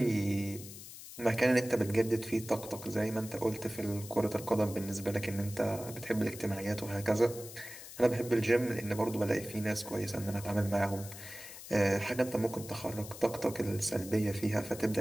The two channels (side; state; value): left; noise; hiss, 14 dB below the sound